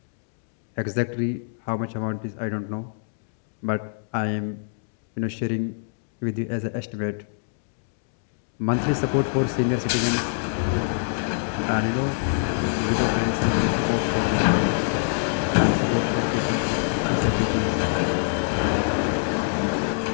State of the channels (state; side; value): silent; right; digital silence